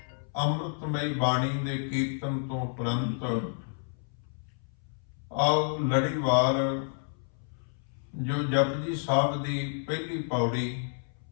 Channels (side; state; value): right; silent; 58 dB below the other